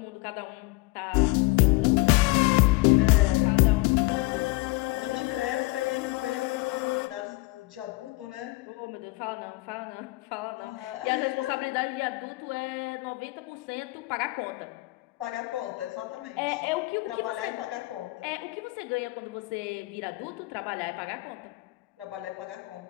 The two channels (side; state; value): right; quieter; 22.8 dB